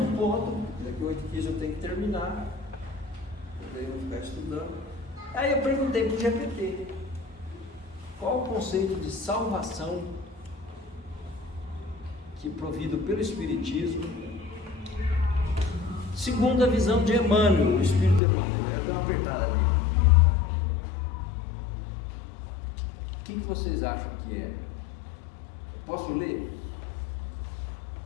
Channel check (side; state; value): right; drops out; at 18.2 s